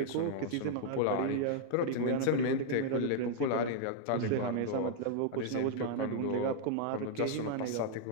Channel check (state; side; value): different; both; correlation -0.01